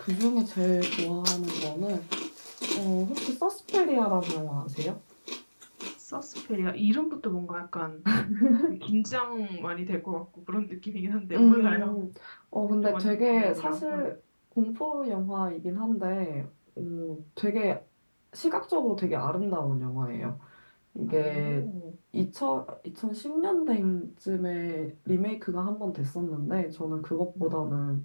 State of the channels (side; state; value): both; inverted; correlation -1.00